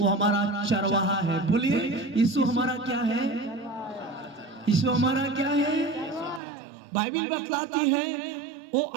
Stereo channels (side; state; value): left; drops out; at 6.4 s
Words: हमारा चरवाहा है। बोलिए, यीशु हमारा क्या है? यीशु हमारा क्या है? बाइबल बतलाती है वो